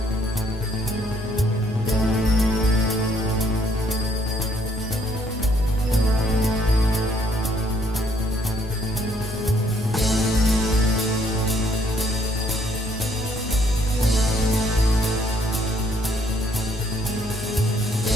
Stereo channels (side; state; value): both; normal; correlation 0.67